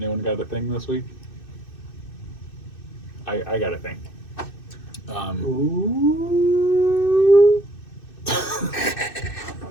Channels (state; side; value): late; right; 2.6 ms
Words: got a thing this week? I got a thing. Ooh.